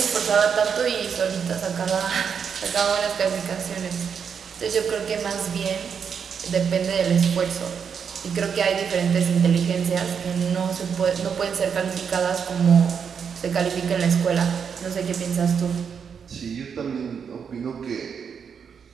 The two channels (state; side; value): quieter; left; 6.8 dB